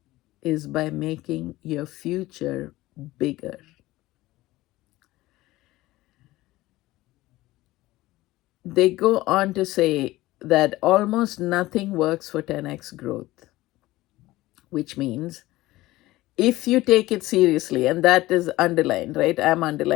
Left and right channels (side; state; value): right; quieter; 17.8 dB